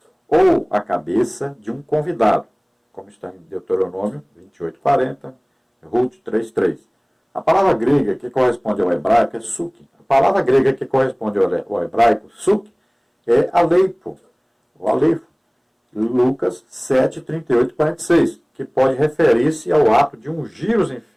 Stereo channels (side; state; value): both; identical; correlation 1.00